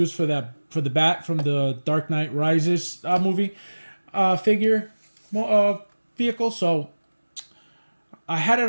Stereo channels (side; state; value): both; inverted; correlation -1.00